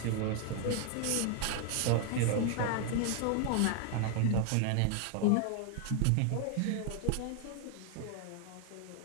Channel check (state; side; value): different; both; correlation 0.00